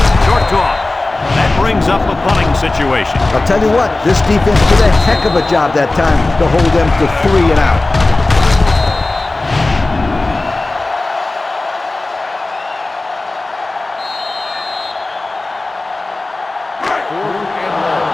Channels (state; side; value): quieter; right; 3.0 dB